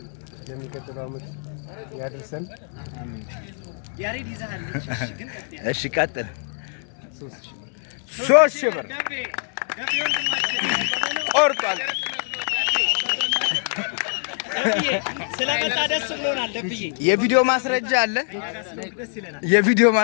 ለሚቀጥለው ዓመት ያድርሰን። ያሬድ ይዛለች። እሺ ቀጥል። 3000 ብር ቆርጧል። ስለመጣ ደስ ብሎናል። ደብዬ የቪዲዮ ማስረጃ አለ። የቪዲዮ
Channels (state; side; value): silent; right; 58 dB below the other